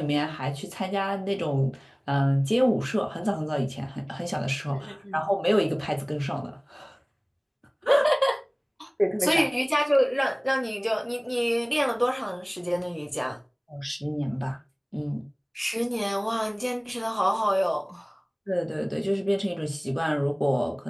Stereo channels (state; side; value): identical; both; correlation 1.00